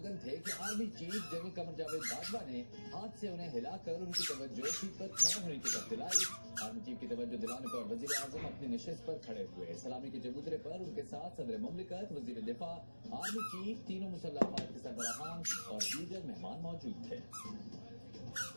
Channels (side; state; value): both; inverted; correlation -1.00